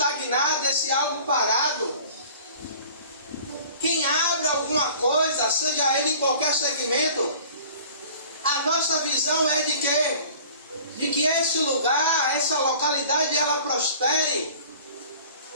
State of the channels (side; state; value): both; inverted; correlation -0.47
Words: esse algo parado. Quem abre alguma coisa, seja ele em qualquer segmento, a nossa visão é de quê? De que esse lugar, essa localidade, ela prospere.